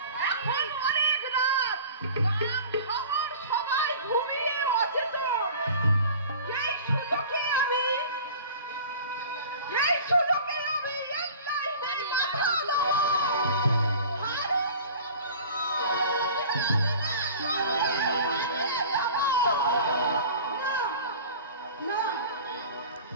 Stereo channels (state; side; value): inverted; both; correlation -0.41